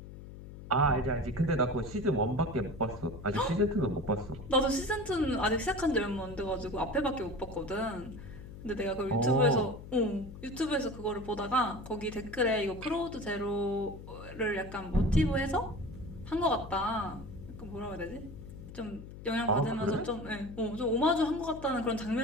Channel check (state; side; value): noise; left; hum, 13 dB below the sound